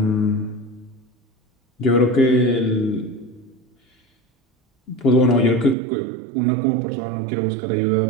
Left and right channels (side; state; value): left; drops out; at 5.8 s